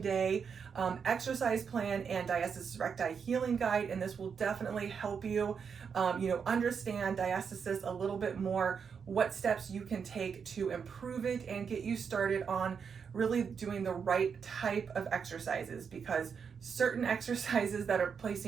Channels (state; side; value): quieter; left; 6.5 dB